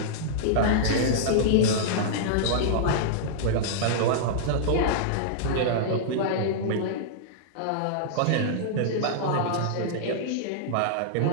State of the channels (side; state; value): both; different; correlation -0.02